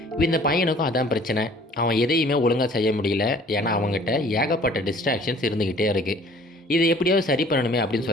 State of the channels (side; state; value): both; normal; correlation 0.53